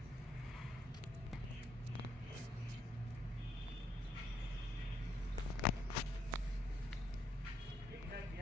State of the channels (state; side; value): normal; both; correlation 0.73